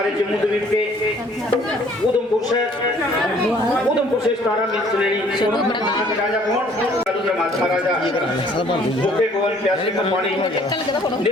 जम्मू द्वीप के उधमपुर से 17 मील चुनेनी राजा कौन महाराजा भूखे को प्यासे को पानी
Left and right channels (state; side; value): normal; both; correlation 0.58